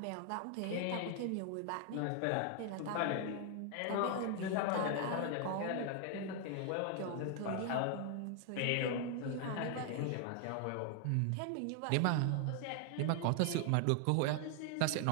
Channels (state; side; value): different; both; correlation 0.00